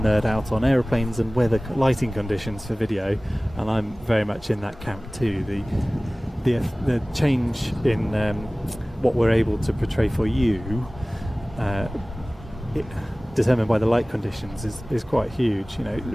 out on: aeroplanes and weather lighting conditions for video, and I'm very much in that camp too. The change in what we're able to portray for you, determined by the light conditions, is quite huge. You know,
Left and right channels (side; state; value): both; normal; correlation 0.98